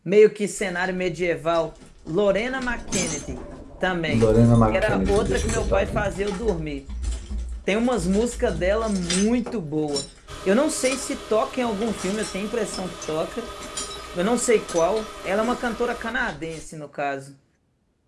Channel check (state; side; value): identical; both; correlation 1.00